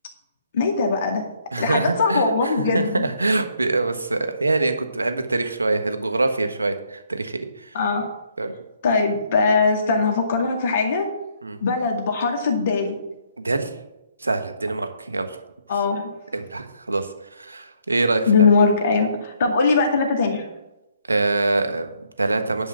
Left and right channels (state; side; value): inverted; both; correlation -0.69